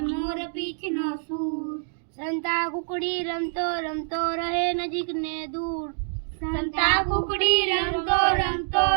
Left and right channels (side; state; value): left; silent; digital silence